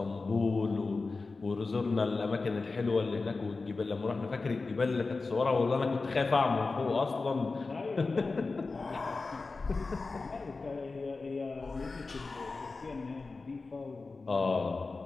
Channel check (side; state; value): right; quieter; 3.9 dB